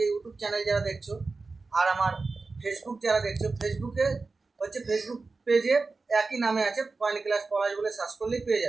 ইউটিউব চ্যানেল যারা দেখছো, আর আমার ফেসবুক যারা দেখছো, ফেসবুকে হচ্ছে ফেসবুক পেজে একই নামে আছে, কয়েন ক্লাস পলাশ বলে সার্চ করলেই পেয়ে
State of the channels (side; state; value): left; quieter; 3.9 dB